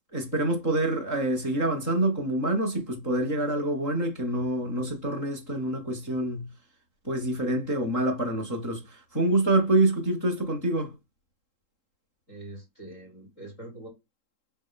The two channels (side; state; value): right; late; 3.8 ms